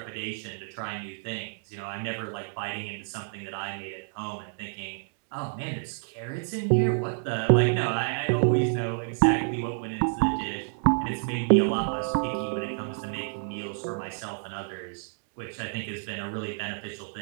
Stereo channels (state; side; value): silent; left; digital silence